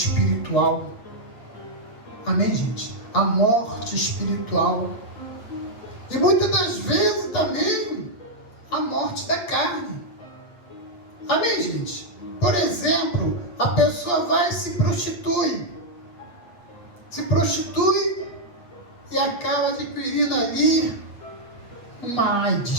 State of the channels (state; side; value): late; right; 8.6 ms